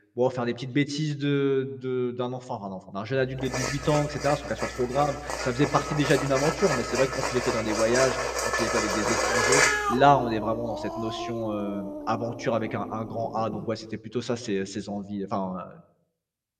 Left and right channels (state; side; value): identical; both; correlation 1.00